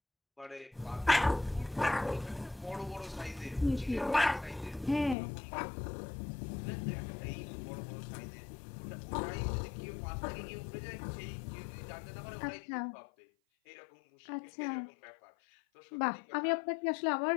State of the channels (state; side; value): drops out; right; at 5.2 s